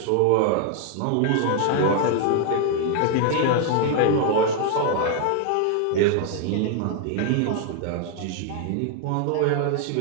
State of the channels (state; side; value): different; both; correlation 0.00